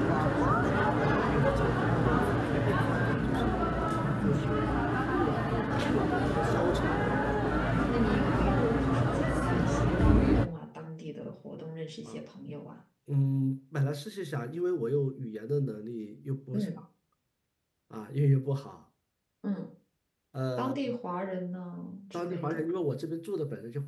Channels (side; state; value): both; identical; correlation 1.00